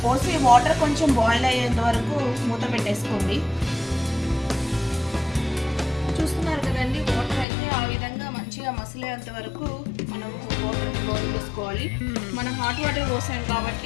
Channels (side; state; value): right; drops out; at 7.5 s